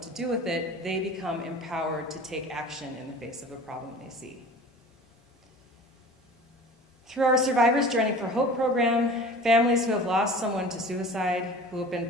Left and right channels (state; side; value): normal; both; correlation 0.41